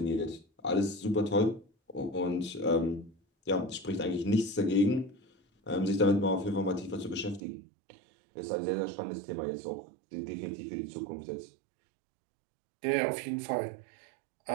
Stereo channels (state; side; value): drops out; left; at 7.4 s